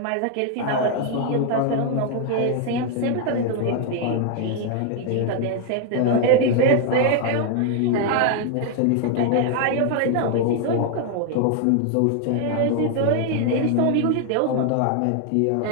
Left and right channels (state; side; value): different; both; correlation 0.00